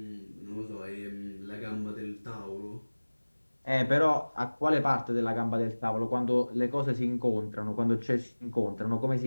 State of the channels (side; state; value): both; inverted; correlation -1.00